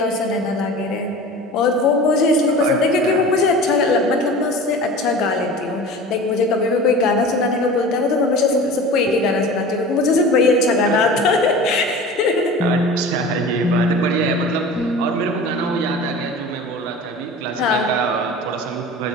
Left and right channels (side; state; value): both; normal; correlation 0.37